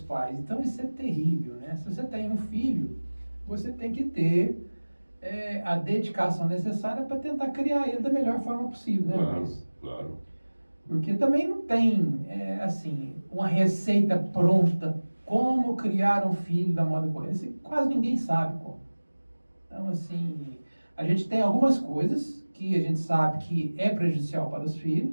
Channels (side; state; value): both; inverted; correlation -1.00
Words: Então isso é terrível, né? Se você tem um filho, você tem que ter a dedicação necessária para tentar criar ele da melhor forma possível, né, Claro, Luiz? claro. Porque também não tem, assim, uma receita pronta como criar um filho da moda correta. Quase ninguém sabe como. Então, assim, a gente tem algumas coisas que a gente sabe que é prejudicial para os